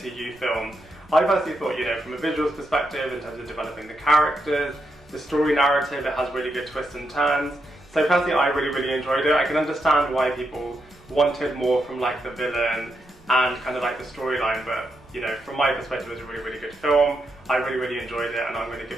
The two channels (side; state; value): right; noise; rumble, 27 dB below the sound